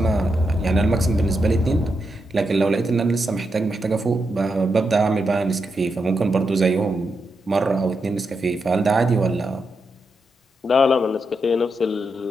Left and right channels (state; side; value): normal; both; correlation 0.85